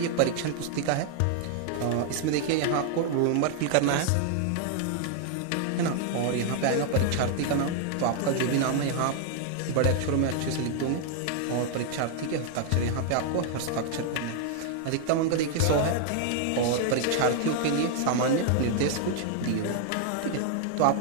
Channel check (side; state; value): both; different; correlation 0.00